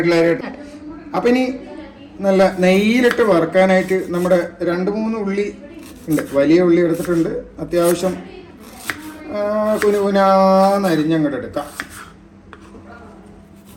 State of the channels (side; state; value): both; identical; correlation 1.00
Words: അപ്പം ഇനി നല്ല നെയ്യിലിട്ട് വറുക്കാനായിട്ട് നമ്മുടെ 2-3 ഉള്ളി ഉണ്ട്. വലിയ ഉള്ളി എടുത്തിട്ടുണ്ട്. അത്യാവശ്യം കുനുകുനാന്ന് അരിഞ്ഞങ്ങോട്ട് എടുക്കാം.